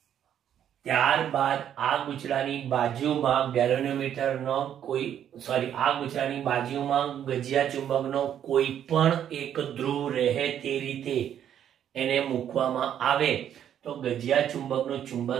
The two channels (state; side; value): quieter; left; 9.8 dB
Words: ત્યારબાદ આ ગૂંચળાની બાજુમાં ગેલોમીટરનો આ ગૂંચળાની બાજુમાં ગજિયા ચુંબકનો કોઈ પણ એક ધ્રુવ રહે તે રીતે એને મૂકવામાં આવે તો ગજિયા ચુંબકનો